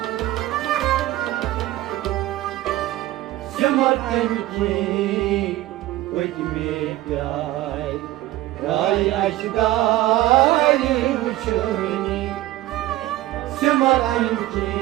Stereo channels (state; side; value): quieter; left; 16.1 dB